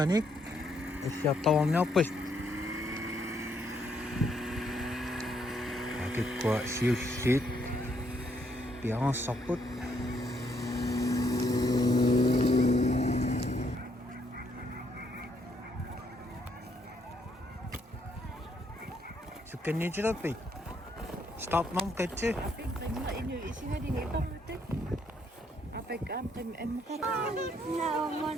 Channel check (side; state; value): both; normal; correlation 0.72